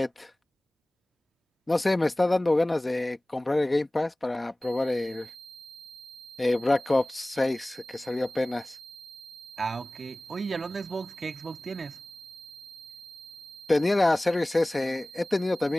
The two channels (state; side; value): normal; both; correlation 0.98